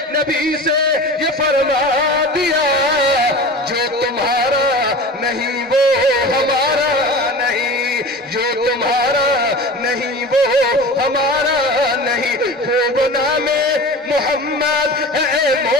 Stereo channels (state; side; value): normal; both; correlation 0.35